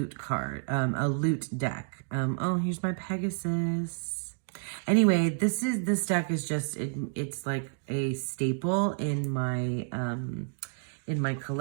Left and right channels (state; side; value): silent; left; 58 dB below the other